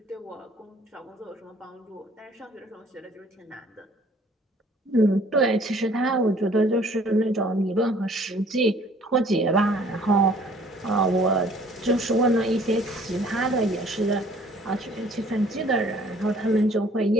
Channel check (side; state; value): both; normal; correlation 0.56